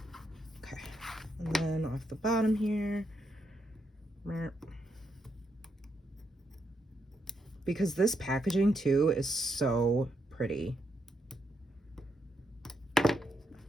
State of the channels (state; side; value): normal; both; correlation 0.79